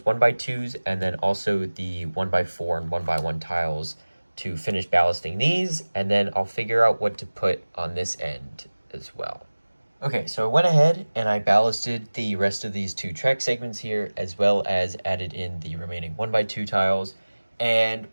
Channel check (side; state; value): both; inverted; correlation -1.00